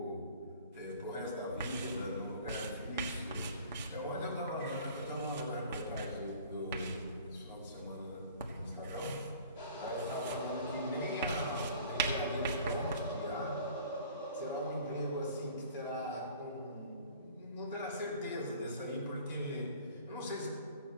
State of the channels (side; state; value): both; inverted; correlation -0.48